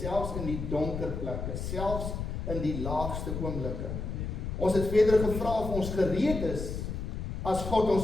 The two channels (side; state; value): left; noise; rumble, 4 dB below the sound